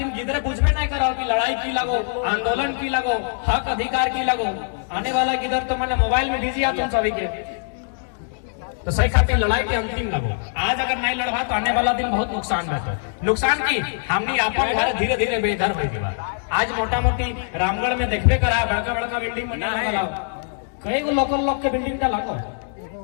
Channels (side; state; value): right; silent; digital silence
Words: गिदरे बुझबे नहीं करो कि लड़ाई की लगो आंदोलन की लगो हक अधिकार की लगो आने वाला गिदर तो मैंने मोबाइल में बिजी तुम सभी के तो सही खातिर लड़ाई के अंतिम लगो। आज अगर नहीं लड़वा तो आने वाला दिन बहुत नुकसान है नुकसान की हमने अपन घर धीरे धीरे बेघर हो गया। आज मोटा मोटी रामगढ़ में देखबे करा बड़का बड़का बिल्डिंग बना है कई गो लोकल लोग के बिल्डिंग का लागो